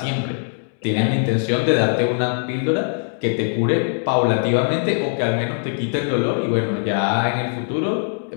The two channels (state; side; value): silent; right; digital silence